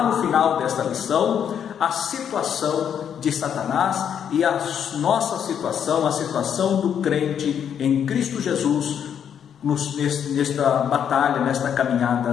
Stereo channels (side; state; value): right; quieter; 8.5 dB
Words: no final desta lição a situação de Satanás e a nossa situação, a situação do crente em Cristo Jesus nesta batalha, nesta